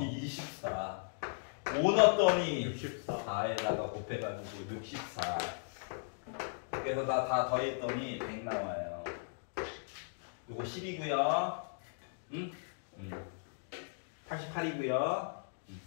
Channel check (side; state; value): right; silent; digital silence